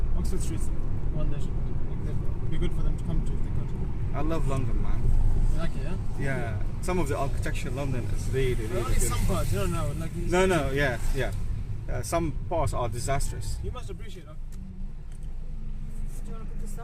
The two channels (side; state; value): both; identical; correlation 1.00